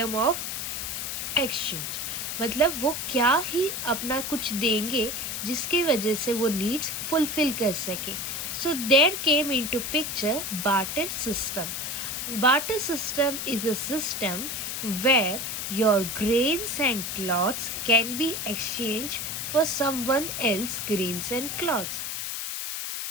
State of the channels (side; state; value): left; noise; hiss, 4 dB below the sound